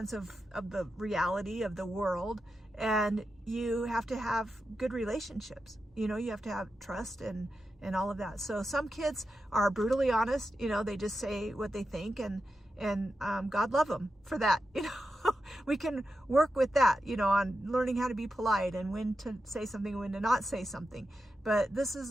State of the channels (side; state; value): both; normal; correlation 0.89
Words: of the reality of the world, and you have to have good relationships. You have to have trust and all of that. So some kids are brutally honest, they just say what they think, and God love them for that. We can work with that, on learning how to be polite and when to say something and when to not say something. But this is